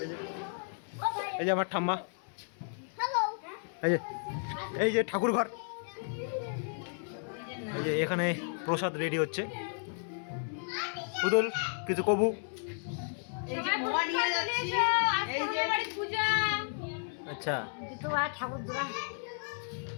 এই যে আমার ঠাম্মা, এই যে ঠাকুর ঘর, এই যে এখানে প্রসাদ রেডি হচ্ছে। পুতুল কিছু কবু? সবাই নিয়ে যাচ্ছি, এই যে পূজা। আচ্ছা তোমার ঠাকুর দোয়া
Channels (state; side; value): silent; right; 56 dB below the other